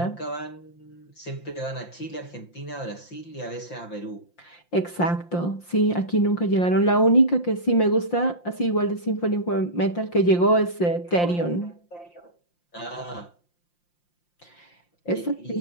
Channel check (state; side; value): late; right; 5.8 ms